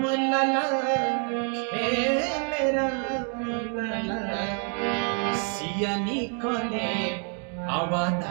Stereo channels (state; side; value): quieter; left; 38.5 dB